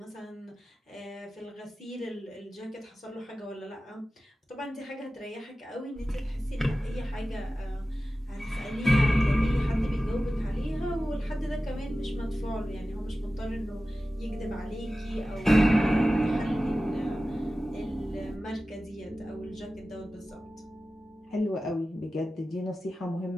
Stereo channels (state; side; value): normal; both; correlation 0.95